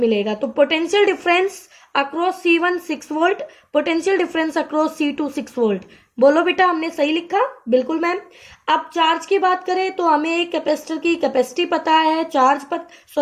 तो potential difference across C1 6 volt, potential difference across C2 6 volt. बोलो बेटा, हमने सही लिखा? बिल्कुल मैम। अब चार्ज की बात करें तो हमें एक कैपेसिटर की कैपेसिटी पता है,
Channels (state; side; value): identical; both; correlation 1.00